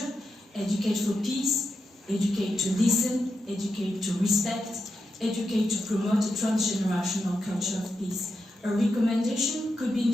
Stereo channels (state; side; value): normal; both; correlation 0.86